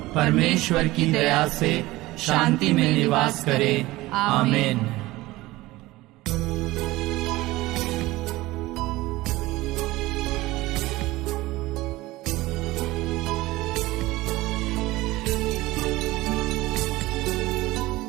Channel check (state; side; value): quieter; left; 18.9 dB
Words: परमेश्वर की दया से शांति में निवास करे। आमीन।